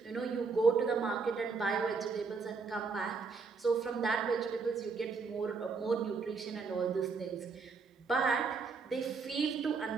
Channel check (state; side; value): quieter; left; 4.8 dB